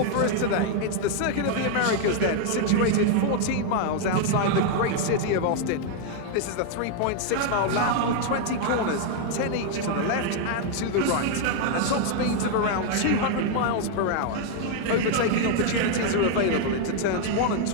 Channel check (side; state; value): both; different; correlation 0.00